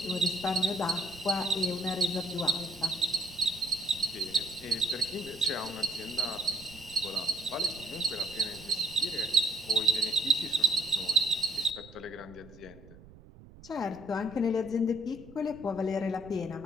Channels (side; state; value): right; noise; rumble, 20 dB below the sound